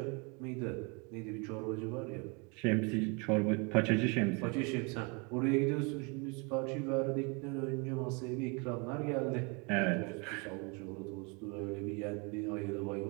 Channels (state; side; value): quieter; left; 31.7 dB